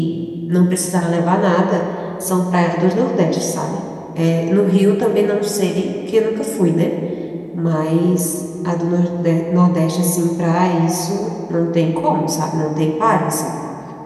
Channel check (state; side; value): identical; both; correlation 1.00